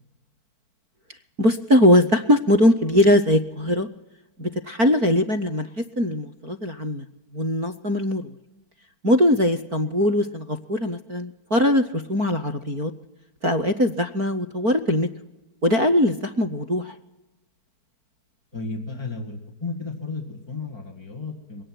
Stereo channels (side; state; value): left; late; 4.5 ms